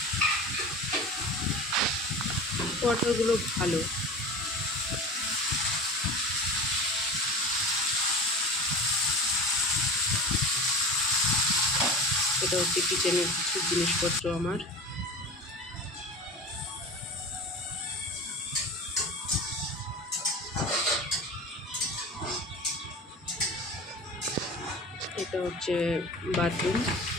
কোয়ার্টারগুলো ভালো। এটা হচ্ছে কিচেনের কিছু জিনিসপত্র আমার। এটা হচ্ছে বাথরুম।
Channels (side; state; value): both; normal; correlation 0.33